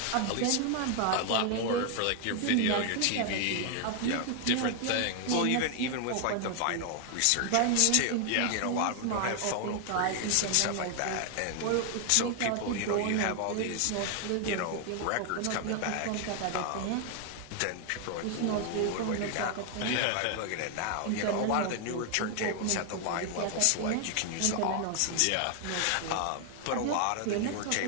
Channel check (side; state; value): both; different; correlation 0.00